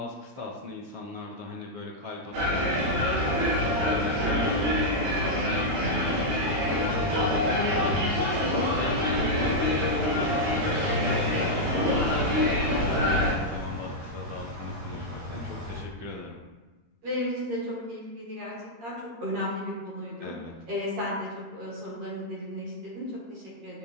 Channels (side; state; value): left; late; 13 ms